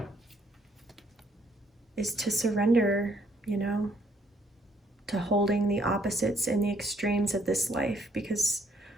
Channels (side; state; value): both; normal; correlation 0.67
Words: is to surrender, you know, to holding the opposites and the extremes of this life, because